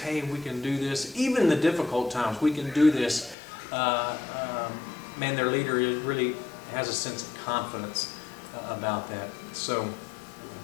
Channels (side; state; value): right; drops out; at 3.4 s